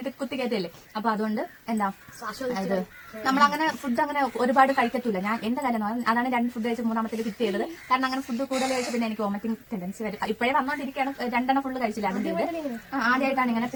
കുത്തി കയറ്റല്ലേ. അപ്പൊ അതുകൊണ്ട് എന്താ ഇത് നമ്മളങ്ങനെ ഫുഡ് അങ്ങനെ ഒരുപാട് കഴിക്കത്തില്ല. ഞാൻ എന്റെ കാര്യം അതാണ് 2 ഫുഡ് കഴിച്ച് 3ാമത്തേൽ കിറ്റ് ചെയ്തത്. കാരണം അങ്ങനെ ഫുഡ് കൂടുതൽ കഴിച്ച് പിന്നെ എനിക്ക് വോമിറ്റിംഗ് ടെൻഡൻസി വരും. ഇപ്പോഴേ വന്നോണ്ടിരിക്കുകയാണ്. 2 ഫുള്ള് കഴിച്ചില്ല. അതിന്റെ ആദ്യമായിട്ടാണ് ഇങ്ങനെ.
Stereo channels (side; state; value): both; identical; correlation 1.00